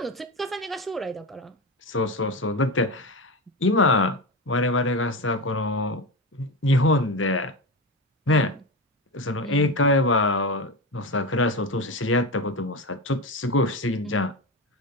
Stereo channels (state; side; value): normal; both; correlation 0.20